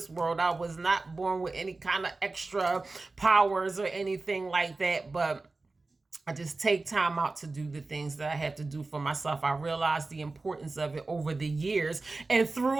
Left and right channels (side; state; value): left; quieter; 3.5 dB